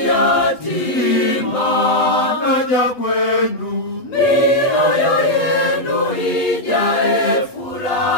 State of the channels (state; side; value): late; right; 8.6 ms